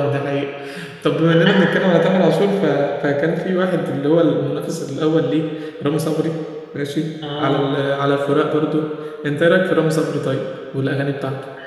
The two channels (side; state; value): both; identical; correlation 1.00